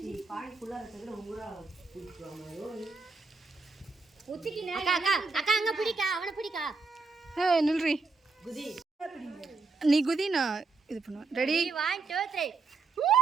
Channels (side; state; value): left; quieter; 4.0 dB